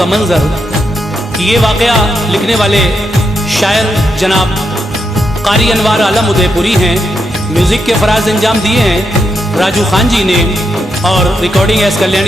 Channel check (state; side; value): normal; both; correlation 0.82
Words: मंज़र। ये वाक़या लिखने वाले शायर जनाब क़ारी अनवार आलम उदयपुरी हैं। म्यूज़िक के फ़राज़ अंजाम दिए हैं राजू खान जी ने और recording S